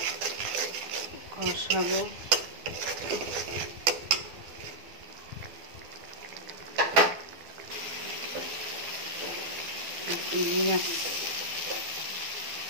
কষাবো। চিংড়ি মাছ,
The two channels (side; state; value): left; late; 12 ms